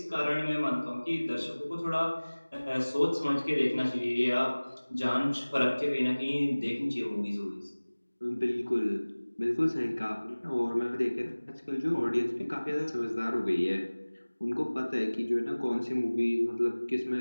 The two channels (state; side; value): inverted; both; correlation -1.00